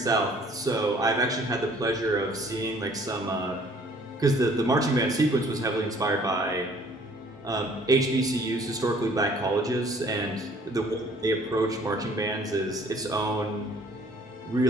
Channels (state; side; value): normal; both; correlation 0.57